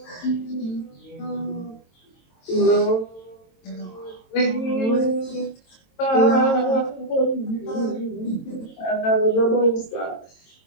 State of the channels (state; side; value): late; right; 22 ms